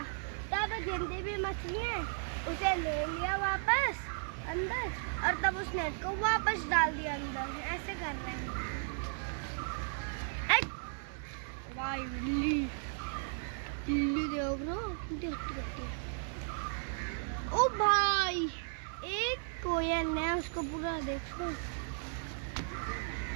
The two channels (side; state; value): left; silent; digital silence